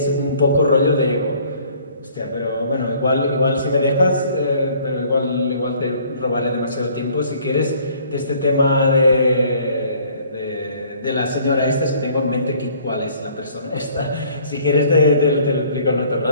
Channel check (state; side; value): inverted; both; correlation -0.57